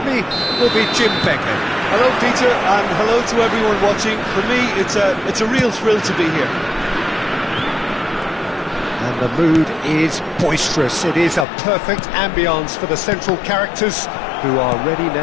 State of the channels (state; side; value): drops out; right; at 11.5 s